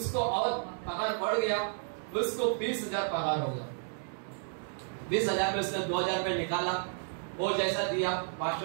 और पगार बढ़ गया, उसको 20,000 पगार हो गया। 20,000 में उसने 2,000 रुपये निकाला, वो जैसा दिया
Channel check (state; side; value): silent; left; digital silence